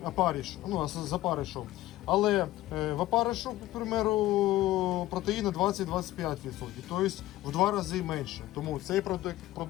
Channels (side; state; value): right; quieter; 15.9 dB